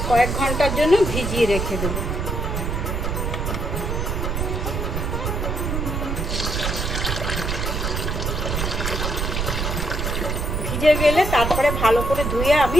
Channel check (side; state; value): right; noise; rumble, 1 dB below the sound